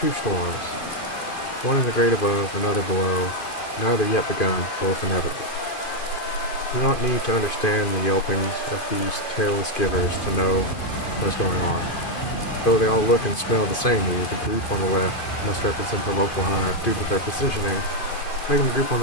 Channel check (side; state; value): right; late; 2.5 ms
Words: storms. One in the great above, another below. Neither yet begun, both inevitable. You do not need to understand the yelpings of these tailless givers to know what is going on. Though they all look and smell the same to you, the group on the left must represent the local hive due to their positioning, making the group on